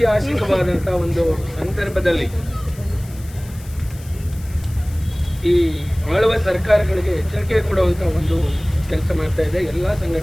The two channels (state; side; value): noise; left; hiss, 21 dB below the sound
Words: ಒಂದು ಸಂದರ್ಭದಲ್ಲಿ ಈ ಆಳುವ ಸರ್ಕಾರಗಳಿಗೆ ಎಚ್ಚರಿಕೆ ಕೊಡುವಂತಹ ಒಂದು ಕೆಲಸ ಮಾಡ್ತಾ ಇದೆ. ಎಲ್ಲ